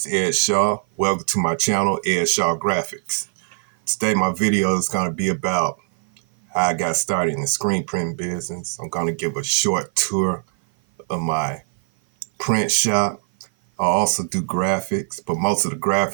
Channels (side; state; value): left; silent; 56 dB below the other